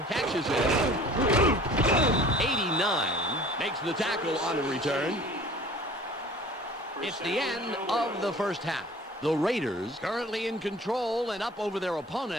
catches it. 89 makes the tackle on the return. It's the end of the first half. The Raiders currently in control and up over their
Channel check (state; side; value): normal; both; correlation 0.46